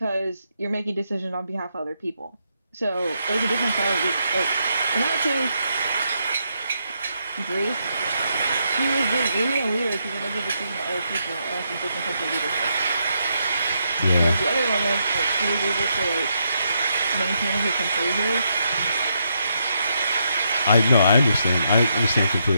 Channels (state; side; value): inverted; both; correlation -0.79